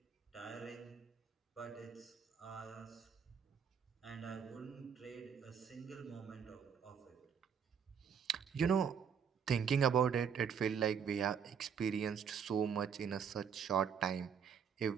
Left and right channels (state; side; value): quieter; left; 7.2 dB